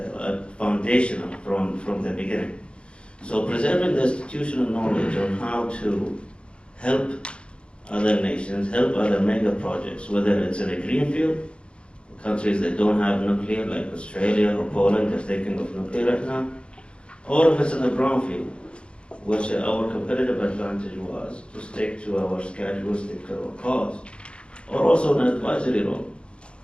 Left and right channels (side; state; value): right; late; 0.057 ms